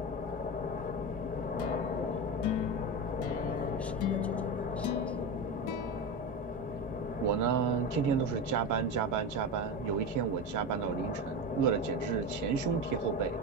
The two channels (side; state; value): both; normal; correlation 0.20